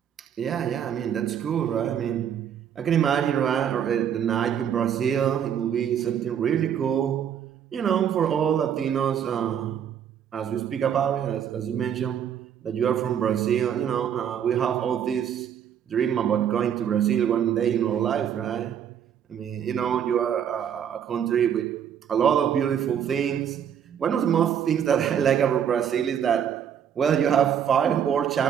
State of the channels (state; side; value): quieter; left; 8.8 dB